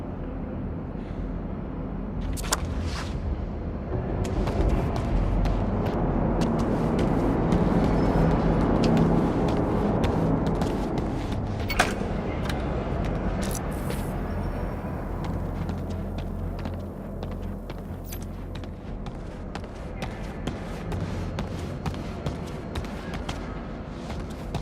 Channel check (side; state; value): both; identical; correlation 1.00